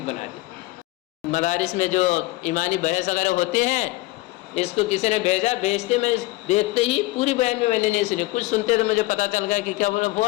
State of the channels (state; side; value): quieter; right; 19.8 dB